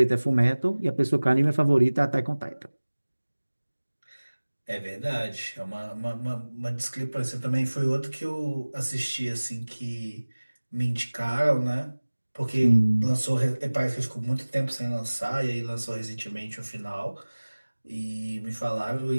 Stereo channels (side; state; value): both; inverted; correlation -1.00